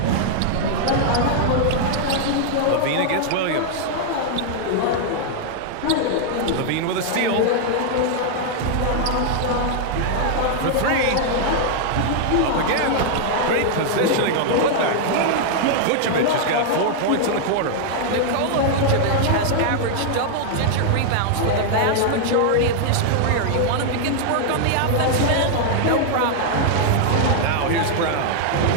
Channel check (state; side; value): different; both; correlation -0.01